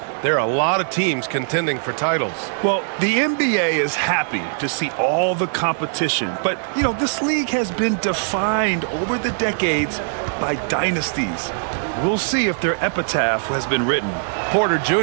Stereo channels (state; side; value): silent; left; digital silence